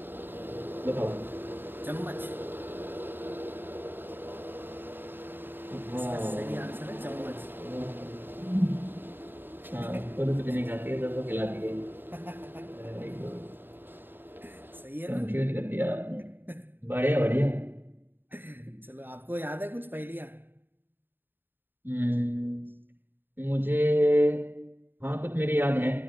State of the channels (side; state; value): left; late; 0.096 ms